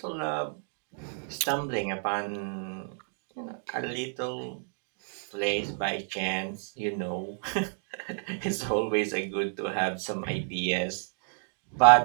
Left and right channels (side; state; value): left; silent; 58 dB below the other